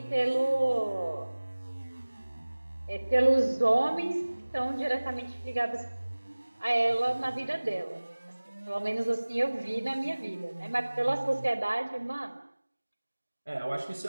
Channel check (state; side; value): inverted; both; correlation -1.00